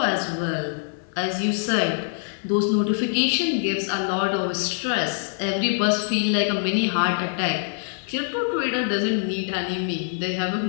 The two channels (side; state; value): right; silent; 62 dB below the other